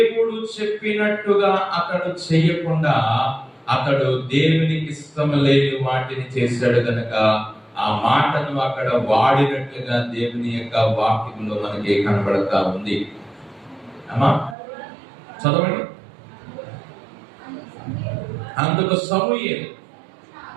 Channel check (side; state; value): left; drops out; at 14.6 s